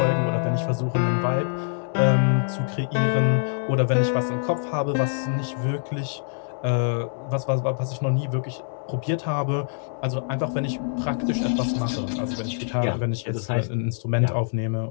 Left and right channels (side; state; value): right; silent; digital silence